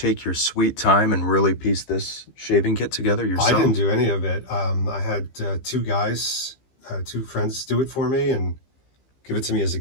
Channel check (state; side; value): late; right; 15 ms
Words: your sweet time and really piece this shaving kit together yourself? I didn't do any of it. I had two friends do it for me and give it to me as a